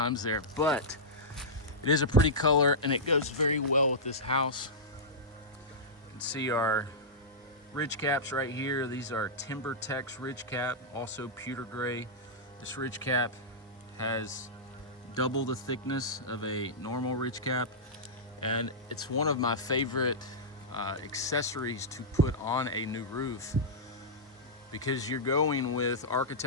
there, but it is a pretty color and it goes very well with this house. You can see our ridge caps right here. These are Timber Tex ridge cap, also pewter gray. This ridge cap has double the thickness of a normal ridge cap, and it's one of my favorite accessories to put on a new roof, because you're going with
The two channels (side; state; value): both; normal; correlation -0.12